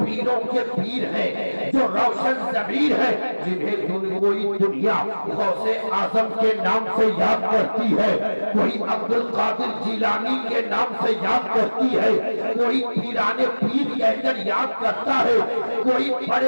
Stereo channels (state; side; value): inverted; both; correlation -1.00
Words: کے پیر ہے، جو روشن ضمیر ہے، جنہیں کوئی دنیا غوث اعظم کے نام سے یاد کرتی ہے، کوئی عبدالقادر جیلانی کے نام سے یاد کرتی ہے، کوئی پیرانے پیر کہہ کر یاد کرتا ہے، کوئی